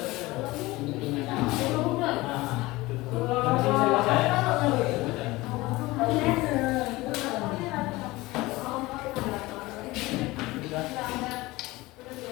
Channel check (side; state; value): right; quieter; 20.3 dB